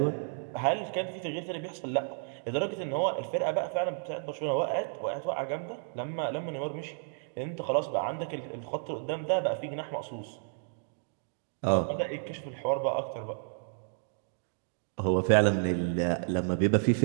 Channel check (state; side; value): silent; left; digital silence